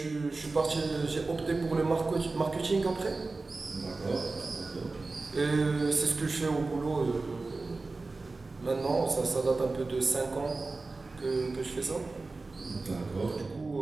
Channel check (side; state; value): left; quieter; 3.6 dB